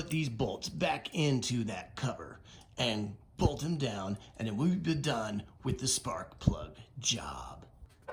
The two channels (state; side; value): identical; both; correlation 1.00